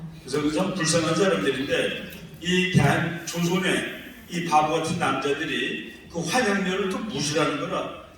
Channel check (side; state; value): both; identical; correlation 1.00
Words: 그래서 그 참 불쌍한 사람들인데, 이 대한 조선의 이 바보 같은 남자들이 그 환향녀를 또 무시하는 거라.